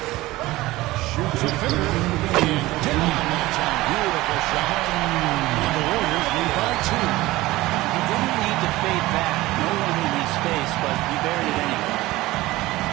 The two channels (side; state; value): left; quieter; 18.3 dB